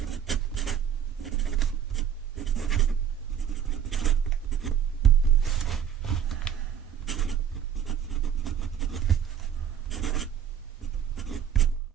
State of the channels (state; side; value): quieter; left; 8.8 dB